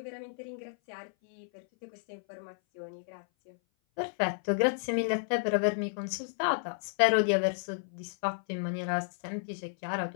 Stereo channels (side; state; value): right; silent; 56 dB below the other